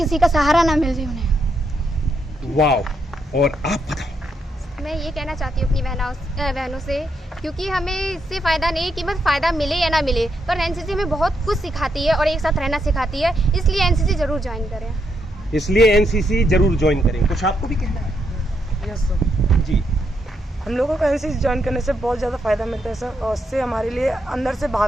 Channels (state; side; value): normal; both; correlation 0.79